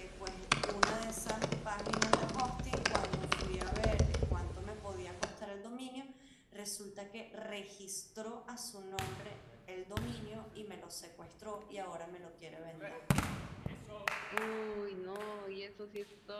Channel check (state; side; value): identical; both; correlation 1.00